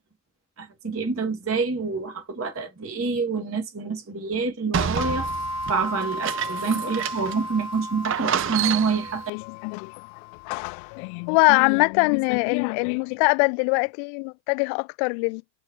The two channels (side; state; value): right; drops out; at 9.3 s